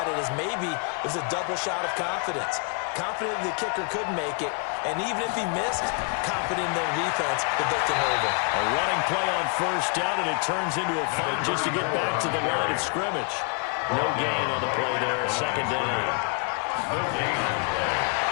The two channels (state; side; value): quieter; right; 35.9 dB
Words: it as maybe it was a double shot of confidence. Confident the kicker could make it, and even if he missed, confident in their defense that they can hold him. A running play on first down, and it turns into a fight just to get back to the line of scrimmage. No gain on the play there, second down. No gain.